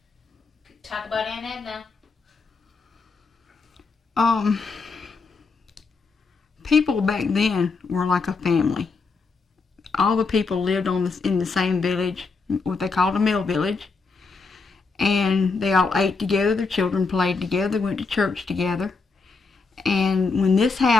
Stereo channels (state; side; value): quieter; right; 4.4 dB